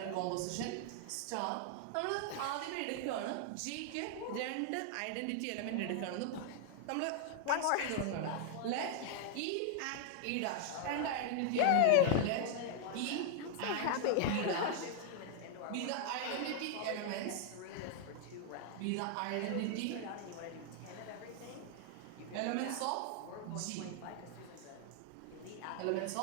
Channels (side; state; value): both; different; correlation 0.00